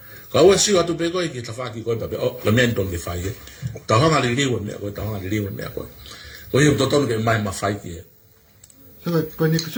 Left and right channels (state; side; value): identical; both; correlation 1.00